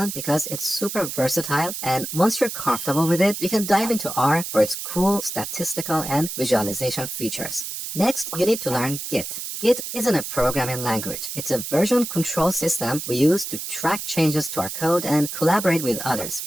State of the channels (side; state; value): right; noise; hiss, 6 dB below the sound